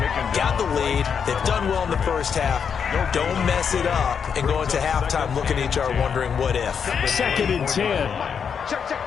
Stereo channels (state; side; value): quieter; right; 6.9 dB